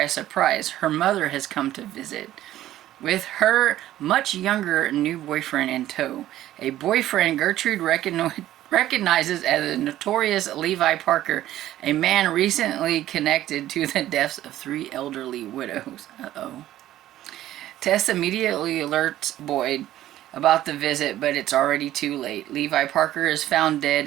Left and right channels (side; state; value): left; quieter; 13.6 dB